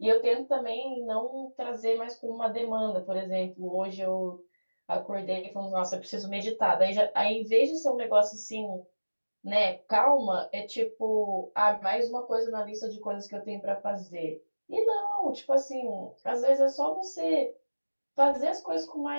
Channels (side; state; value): both; inverted; correlation -1.00